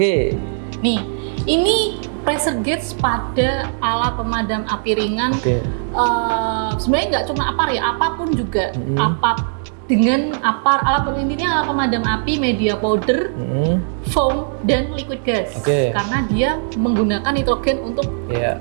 ini pressure gauge pada alat pemadam api ringan. Sebenarnya nggak cuma apar ya, apapun juga. Dengan apar, alat pemadam api, media powder, foam, dan liquid gas. Karena dia menggunakan nitrogen untuk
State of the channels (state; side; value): silent; left; digital silence